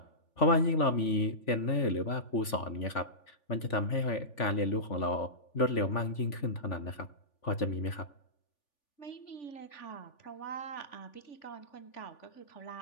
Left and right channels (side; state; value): right; late; 3.4 ms